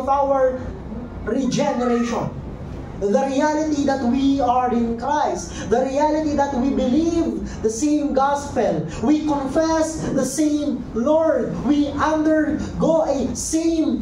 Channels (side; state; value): both; identical; correlation 1.00